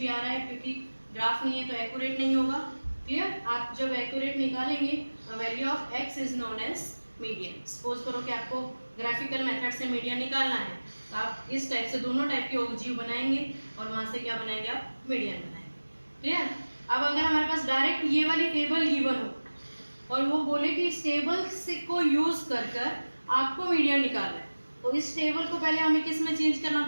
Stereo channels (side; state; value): both; inverted; correlation -1.00